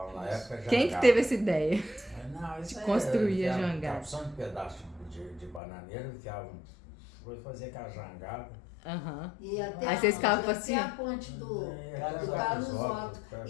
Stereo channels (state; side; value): drops out; right; at 5.6 s